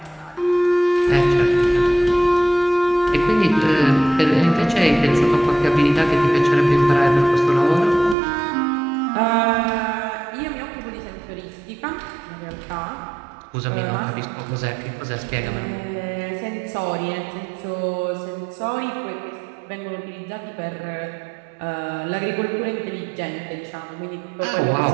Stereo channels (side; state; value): left; drops out; at 8.2 s